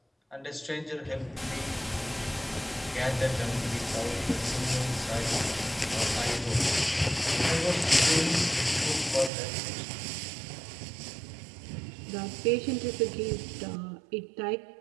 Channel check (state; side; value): drops out; left; at 9.3 s